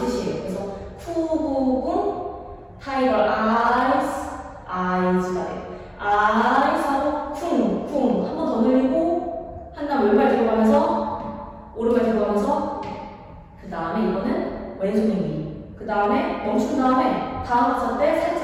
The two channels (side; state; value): both; identical; correlation 1.00